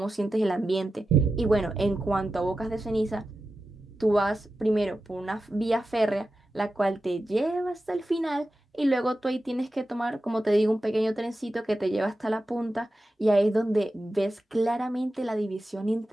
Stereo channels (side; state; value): both; normal; correlation 0.92